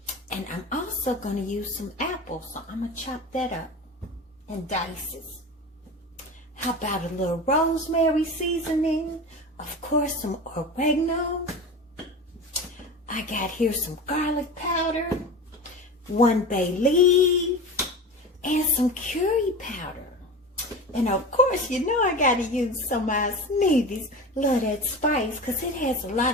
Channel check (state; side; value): normal; both; correlation 0.30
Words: and I'm also gonna use some apples, so I'm gonna chop that up in dices. How about a little rosemary seasoning? Of course, some oregano. I got here some garlic powder, 1 bay leaf, and some curry powder. And of course, you know I gotta use some of my Sneevy Love That Spice because it has a